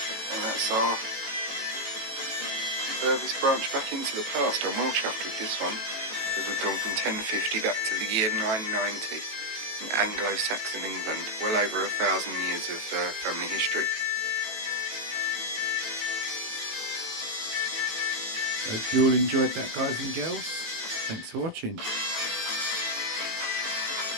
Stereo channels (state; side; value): late; left; 18 ms